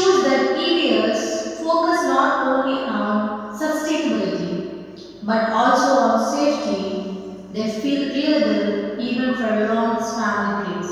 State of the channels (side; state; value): both; identical; correlation 1.00